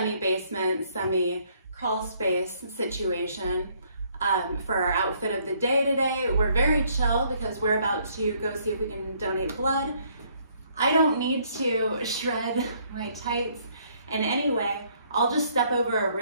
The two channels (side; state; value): both; inverted; correlation -0.66